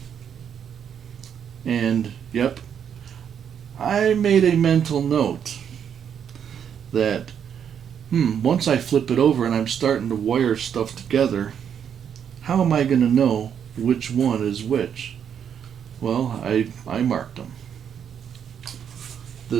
And, yep, I made a mental note that once I flip it over and I'm starting to wire stuff together, how am I going to know which one is which? Well, I marked them.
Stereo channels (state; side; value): quieter; left; 8.2 dB